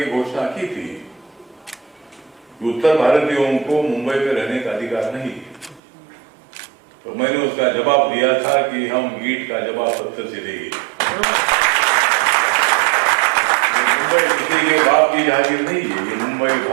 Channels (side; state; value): left; drops out; at 5.8 s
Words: घोषणा की थी कि उत्तर भारतीयों को मुंबई में रहने का अधिकार नहीं, तो मैंने उसका जवाब दिया था कि हम ईंट का जवाब पत्थर से देंगे। मुंबई किसी के बाप की जागीर नहीं है, ये मुंबई